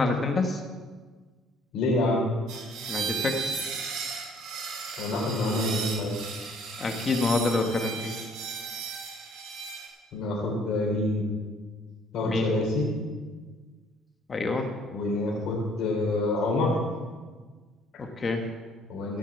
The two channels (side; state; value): both; normal; correlation 0.60